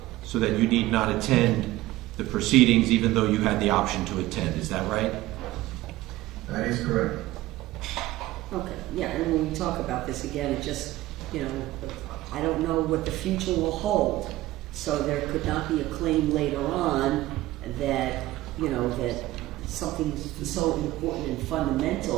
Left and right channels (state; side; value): quieter; left; 16.9 dB